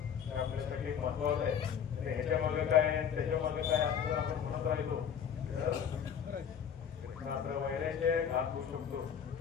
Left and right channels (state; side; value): quieter; right; 8.0 dB